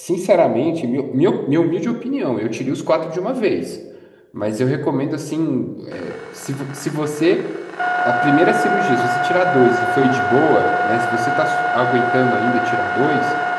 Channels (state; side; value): identical; both; correlation 1.00